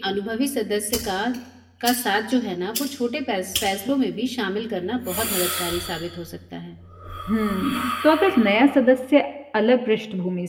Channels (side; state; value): both; identical; correlation 1.00